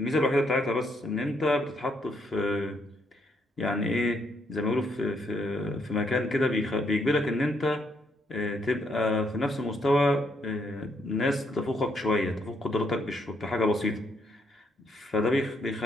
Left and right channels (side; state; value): both; normal; correlation 0.74